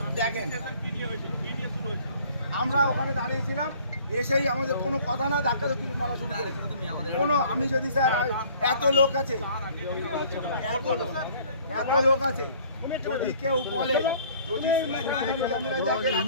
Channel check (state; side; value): inverted; both; correlation -0.54